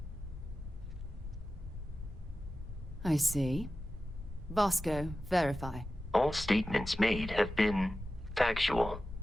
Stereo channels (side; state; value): both; normal; correlation 0.94